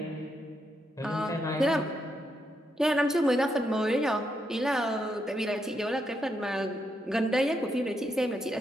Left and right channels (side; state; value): both; normal; correlation 0.80